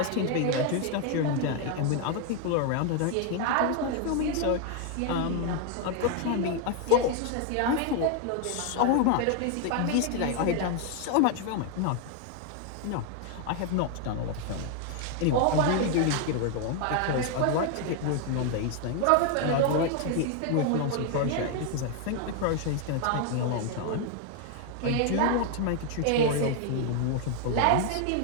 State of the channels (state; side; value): different; both; correlation 0.00